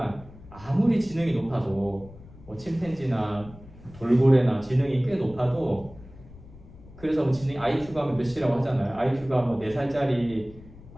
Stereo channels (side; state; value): left; noise; rumble, 20 dB below the sound